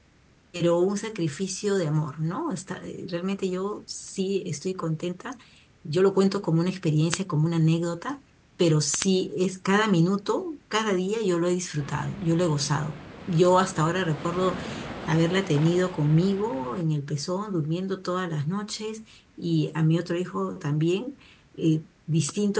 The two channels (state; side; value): identical; both; correlation 1.00